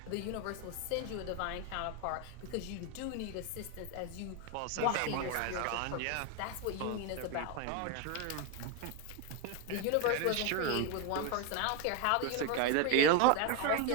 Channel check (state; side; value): different; both; correlation 0.01